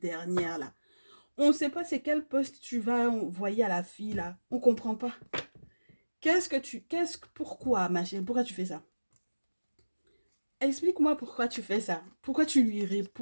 dernière-là, on ne sait pas c'est quel poste tu vas envoyer à la fille, là. On ne comprend pas. Pourquoi, ma chérie, pourquoi tu fais ça? Explique-moi pourquoi tu fais ça. Pourquoi tu lui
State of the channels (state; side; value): inverted; both; correlation -1.00